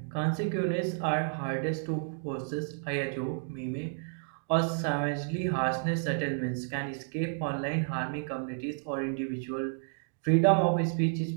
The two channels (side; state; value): left; silent; digital silence